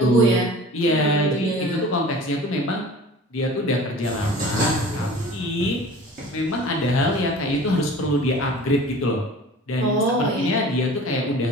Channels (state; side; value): normal; both; correlation 0.42